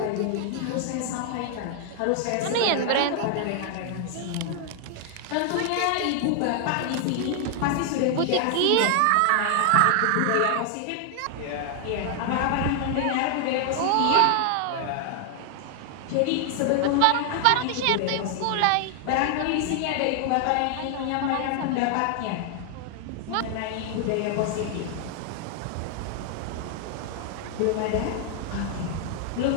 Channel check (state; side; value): different; both; correlation 0.00